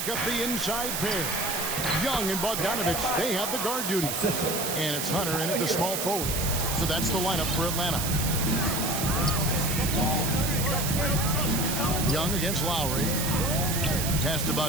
up the inside pair. Young and Bogdanovich, they have the guard duty. And it's Hunter in at the small forward. So that's the lineup for Atlanta. Young against Lowry. Pass to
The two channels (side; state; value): right; noise; hiss, 2 dB below the sound